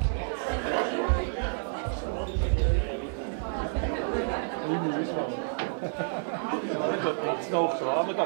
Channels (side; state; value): left; silent; 58 dB below the other